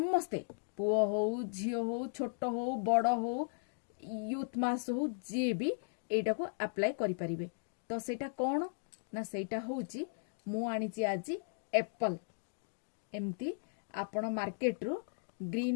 पुओ हो झियो हो छोट हो बड़ हो यूथ मास हो जे भी एटा को अप्लाई करि परिबे। तो सेटा कोन ना सेटा होउची मु आनीची आज एप्पल एमती आपण मार्केट रू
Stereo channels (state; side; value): silent; right; digital silence